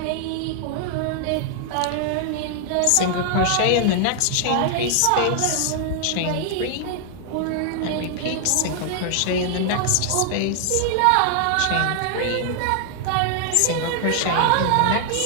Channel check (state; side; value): different; both; correlation 0.00